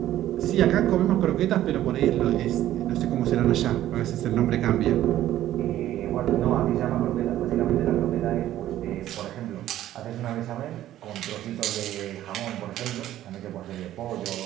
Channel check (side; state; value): left; quieter; 13.2 dB